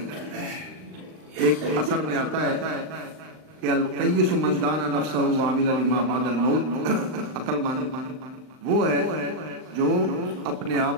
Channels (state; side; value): late; left; 39 ms